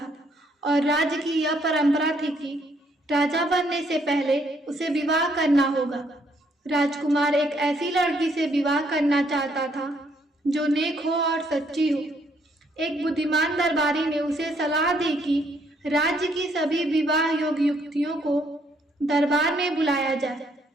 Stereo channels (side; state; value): both; normal; correlation 0.69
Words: और राज्य की यह परंपरा थी कि राजा बनने से पहले उसे विवाह करना होगा। राजकुमार एक ऐसी लड़की से विवाह करना चाहता था जो नेक हो और सच्ची हो। एक बुद्धिमान दरबारी ने उसे सलाह दी कि राज्य की सभी विवाह योग्य युवतियों को दरबार में बुलाया जाए